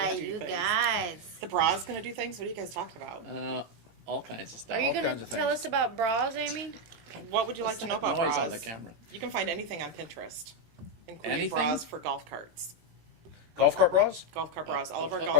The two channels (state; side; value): late; left; 18 ms